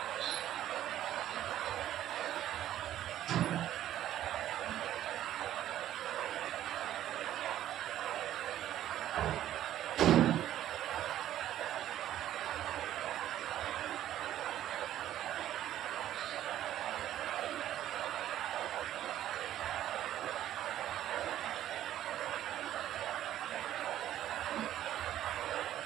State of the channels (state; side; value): quieter; left; 12.3 dB